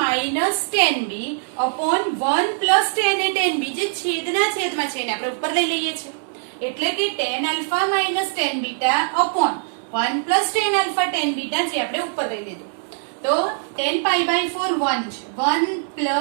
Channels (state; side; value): silent; left; 64 dB below the other